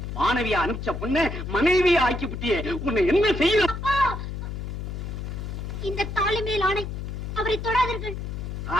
மாணவியா அனுப்பிச்ச பொண்ணு மனைவியா ஆக்கி விட்டியே. உன்னை என்ன செய்யணும்? இந்த தாலி மேல் ஆணை, அவரை தொடாதீர்கள்.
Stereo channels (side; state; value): left; noise; hum, 6 dB below the sound